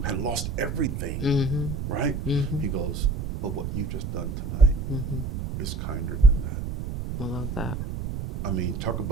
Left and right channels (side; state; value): right; noise; rumble, 4 dB below the sound